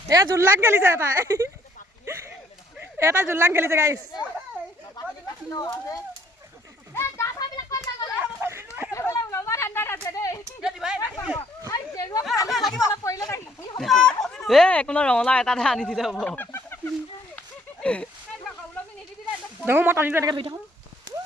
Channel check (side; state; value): both; normal; correlation 0.65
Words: এয়া জোল্লাক খেলিছে তাই এটা জুললাং খেলিছে গাইছ একো নহয় ৰঙালাও এটাহে আনি দিলে হ'ব দেখো মই টানিটো এনেকৈ ধৰি থাকোঁ